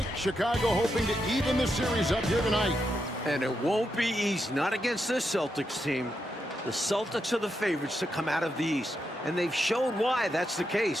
Chicago hoping to even the series up here tonight. And it won't be easy, not against this Celtics team. The Celtics are the favorites to come out of the East, and they've shown why that's the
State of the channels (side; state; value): both; normal; correlation 0.84